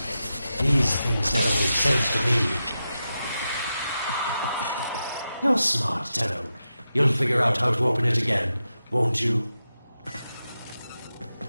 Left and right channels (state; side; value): inverted; both; correlation -0.89